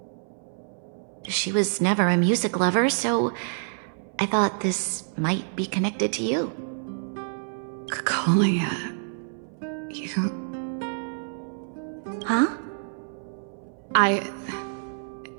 She was never a music lover, so I thought this might be connected to you. Kalia, you... Huh?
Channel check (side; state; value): left; silent; 58 dB below the other